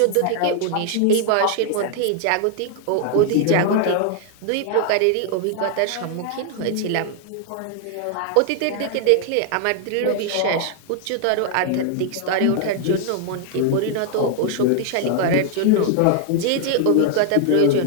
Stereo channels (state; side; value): different; both; correlation 0.00